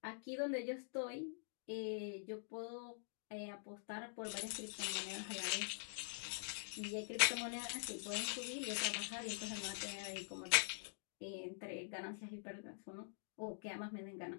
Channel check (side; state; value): right; silent; digital silence